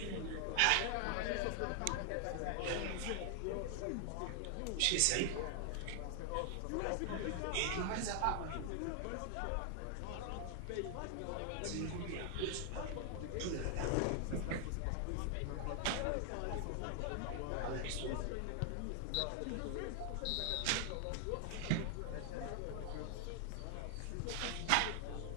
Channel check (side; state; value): both; different; correlation 0.00